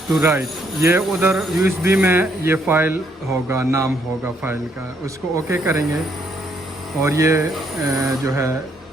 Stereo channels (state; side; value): normal; both; correlation 0.71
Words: to write, یہ ادھر یو ایس بی میں یہ فائل ہوگا، نام ہوگا فائل کا. اس کو اوکے کریں گے اور یہ جو ہے